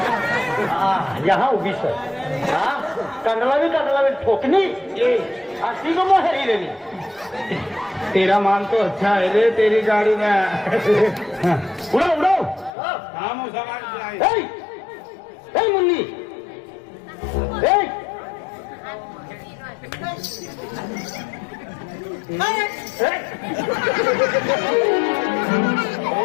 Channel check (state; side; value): drops out; right; at 12.7 s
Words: यहाँ उभी सर कंडला भी ठोकनी अस्सी को मोहरी देनी तेरा माल तो अच्छा है रे तेरी गाड़ी में उड़ो उड़ो हम मुन्नी